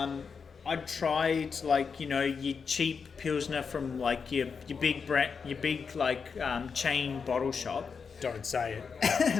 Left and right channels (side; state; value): right; quieter; 5.7 dB